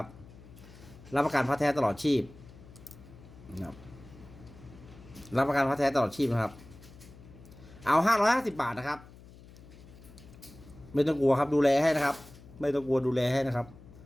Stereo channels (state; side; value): noise; left; hum, 20 dB below the sound